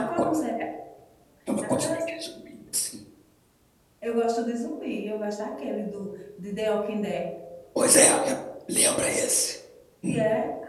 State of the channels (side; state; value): both; identical; correlation 1.00